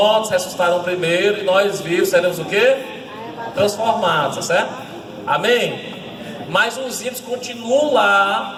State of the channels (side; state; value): both; identical; correlation 1.00